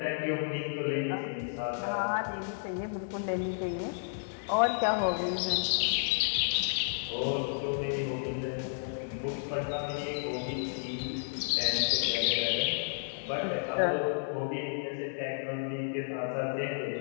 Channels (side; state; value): right; silent; digital silence